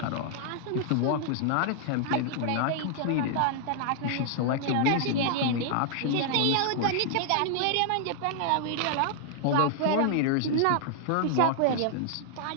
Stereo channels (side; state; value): both; different; correlation 0.00